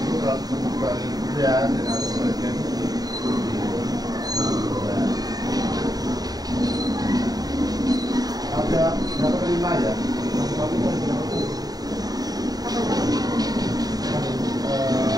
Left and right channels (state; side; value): late; left; 0.18 ms